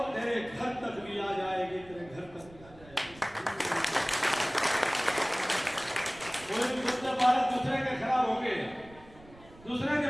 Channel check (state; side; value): noise; right; rumble, 22 dB below the sound